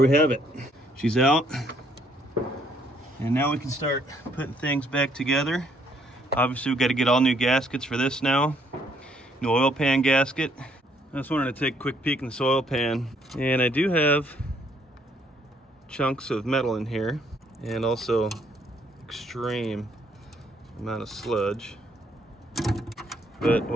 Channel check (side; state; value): both; normal; correlation 0.67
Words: have it. She's out. And now we can start putting things back together. Obviously we've got to get all new gaskets for this now. New oil pan gasket. I just wanted to take a quick peek in this oil pan. And I do have chunks of metal in here. And also extreme amount of sludge. But